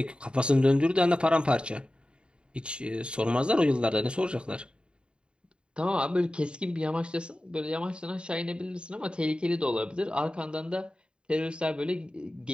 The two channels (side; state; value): left; late; 0.053 ms